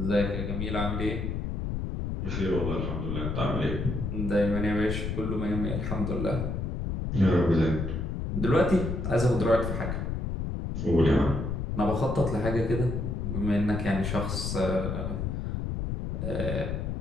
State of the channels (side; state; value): left; noise; rumble, 3 dB below the sound